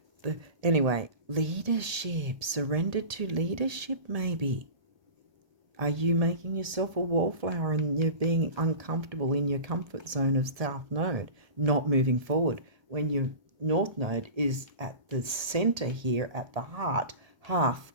anyway, leadership, surrender to leadership maybe. Are you making yourself a wallflower and you're being uncomfortable in your comfort zone of South Node, not moving forward when your North Node is at the center here, at the heart, half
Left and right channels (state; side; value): late; left; 1.7 ms